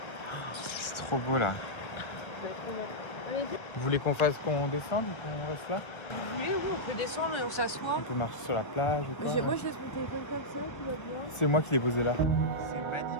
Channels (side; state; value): right; late; 1.3 ms